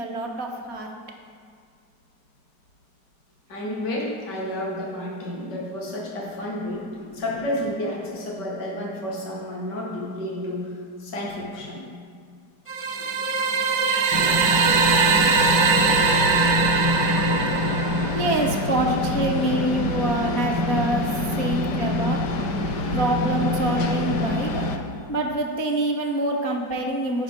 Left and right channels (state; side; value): late; right; 4.4 ms